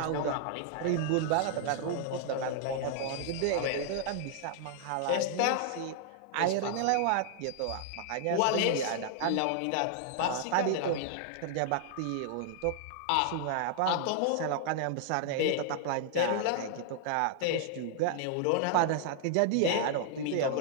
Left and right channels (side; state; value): both; different; correlation -0.01